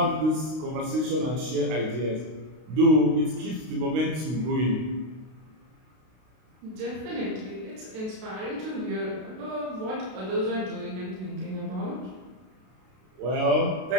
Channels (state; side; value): late; left; 32 ms